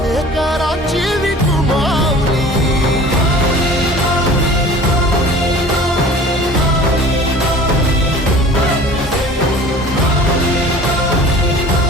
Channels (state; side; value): normal; both; correlation 0.44